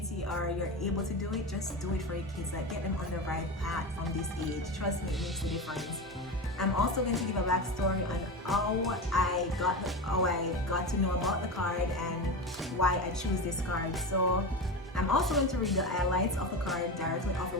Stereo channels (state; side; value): normal; both; correlation 0.22